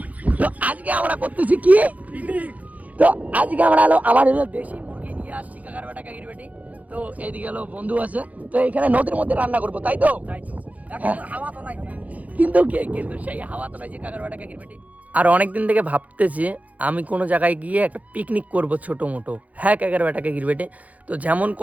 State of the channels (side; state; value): left; late; 0.073 ms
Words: তো আজকে আমরা করতেছি কি, তো আজকে আমরা আমার দেশি মুরগি নিয়ে আসছি কাকার বেটা কাকির বেটি। তো এইদিকে বন্ধু আছে, তো এখানে নদীর মধ্যে রান্না করবো, তাই তো? হাওয়া তো নাই, কিন্তু সেই হাওয়া তো নাই যে কাকার বেটা কাকির বেটি। আর অনেকদিন থেকে ভাবতেছি আমি কোনো জায়গায় গিয়ে একটা পিকনিক করব ছোট মোটো। হ্যাঁ কাকার বেটা কাকির বেটি, তো যেমন